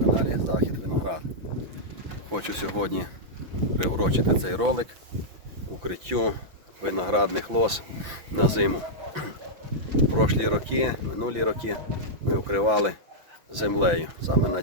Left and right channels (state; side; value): late; left; 5.9 ms